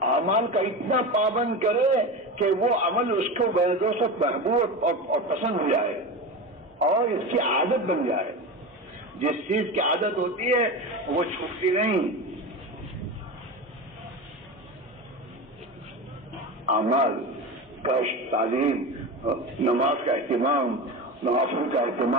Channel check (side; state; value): both; normal; correlation 0.25